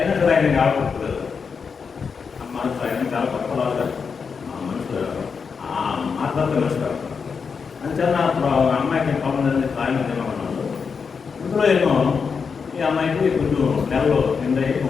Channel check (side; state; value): right; quieter; 5.7 dB